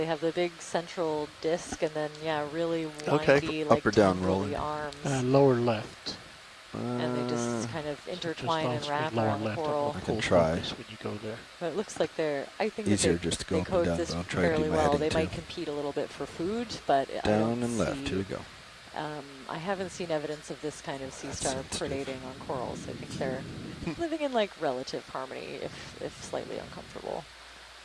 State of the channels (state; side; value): identical; both; correlation 1.00